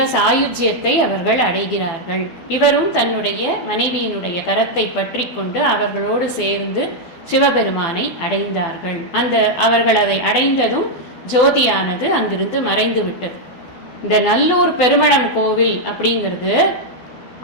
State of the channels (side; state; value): right; late; 12 ms